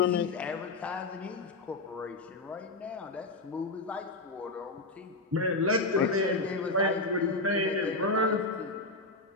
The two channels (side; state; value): right; quieter; 3.1 dB